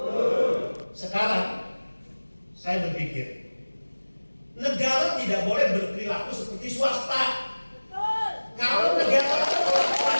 Sekarang saya berpikir, negara tidak boleh berperilaku seperti swasta. Kalau negara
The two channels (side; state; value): both; inverted; correlation -1.00